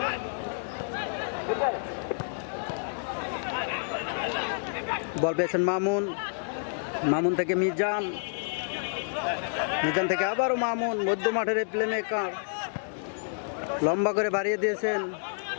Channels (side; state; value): right; silent; digital silence